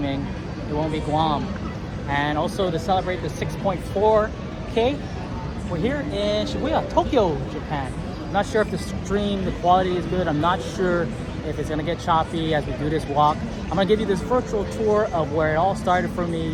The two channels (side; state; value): both; identical; correlation 1.00